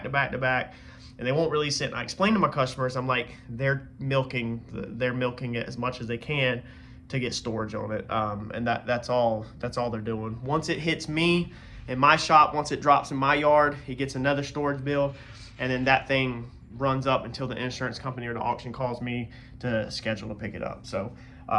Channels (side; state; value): both; identical; correlation 1.00